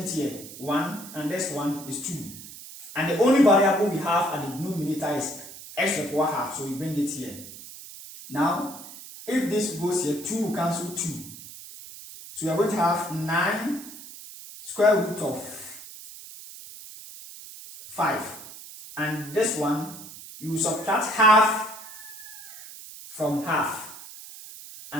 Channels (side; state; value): right; noise; hiss, 15 dB below the sound